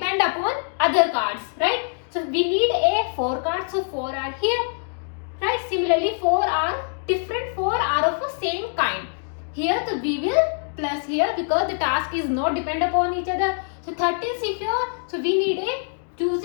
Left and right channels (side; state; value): right; silent; 63 dB below the other